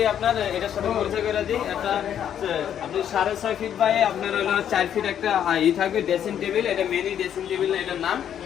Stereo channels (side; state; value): right; quieter; 9.5 dB